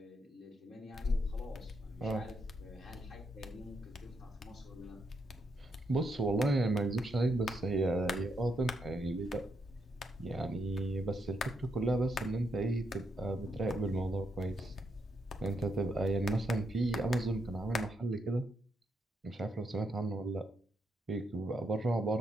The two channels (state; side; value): normal; both; correlation 0.79